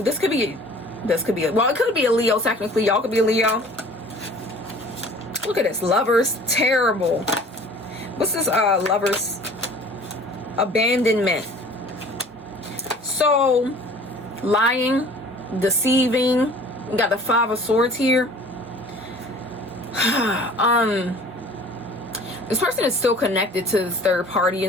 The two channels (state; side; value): normal; both; correlation 0.47